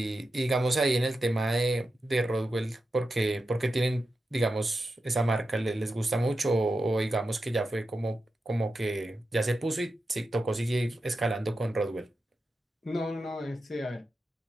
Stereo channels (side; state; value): both; normal; correlation 0.90